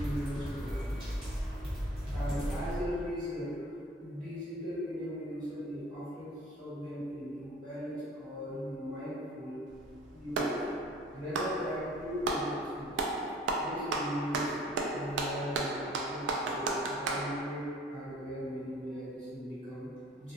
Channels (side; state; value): both; normal; correlation 0.49